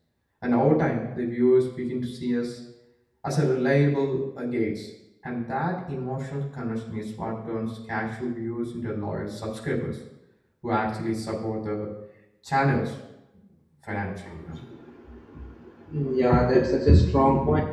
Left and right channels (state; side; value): identical; both; correlation 1.00